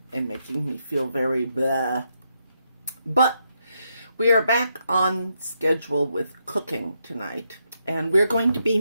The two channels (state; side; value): inverted; both; correlation -0.80